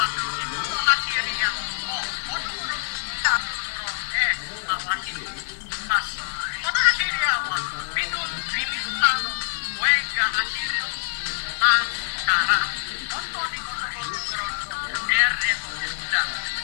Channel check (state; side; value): silent; right; digital silence